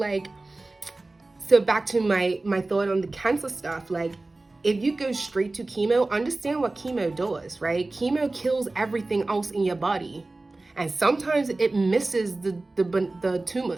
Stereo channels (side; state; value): left; quieter; 3.1 dB